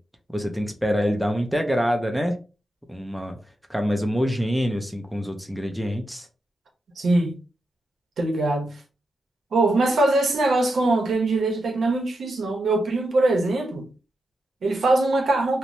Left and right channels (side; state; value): both; normal; correlation 0.87